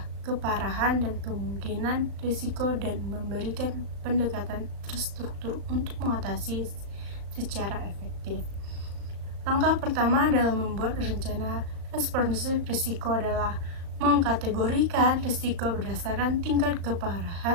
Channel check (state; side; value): late; left; 36 ms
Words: keparahan, dan kemungkinan risiko dan memberikan pendekatan terstruktur untuk mengatasi secara efektif. Langkah pertama dalam membuat rencana respons risiko adalah mengkategorikan risiko berdasarkan tingkat